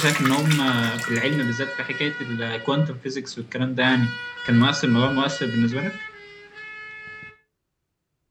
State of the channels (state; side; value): identical; both; correlation 1.00